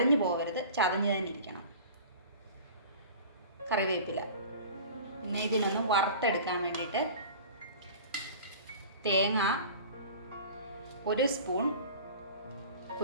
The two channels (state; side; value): inverted; both; correlation -0.40